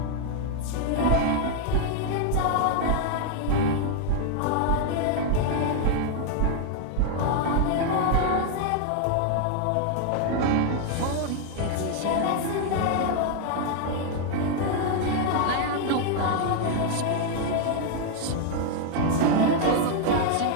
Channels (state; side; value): different; both; correlation 0.00